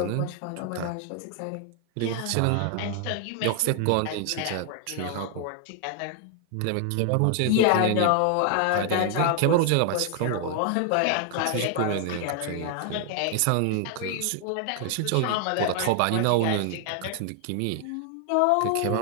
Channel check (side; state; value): both; different; correlation 0.00